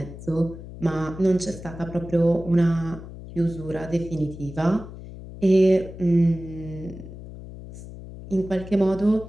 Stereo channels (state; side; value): noise; left; hum, 13 dB below the sound